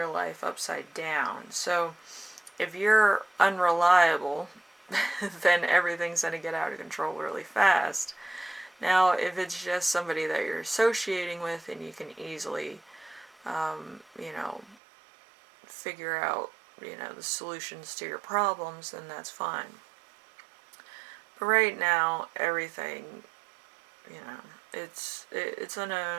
life upside down. So if you're unreliable, then everything's going to get out of control really fast. Now, if it's just somebody that you're associating with and you can easily, figure out, the solutions to your problems, then that's fine. But right now, everything, it's going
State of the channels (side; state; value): left; drops out; at 14.8 s